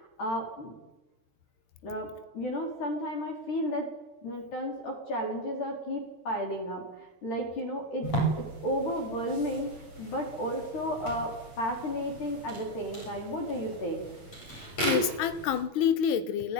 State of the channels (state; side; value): late; right; 6.3 ms